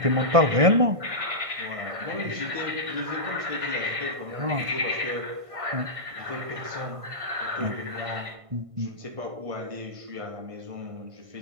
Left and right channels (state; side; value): late; left; 1.5 ms